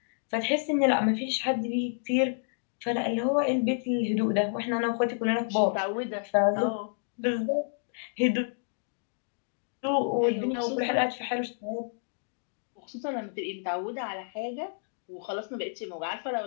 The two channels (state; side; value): silent; right; digital silence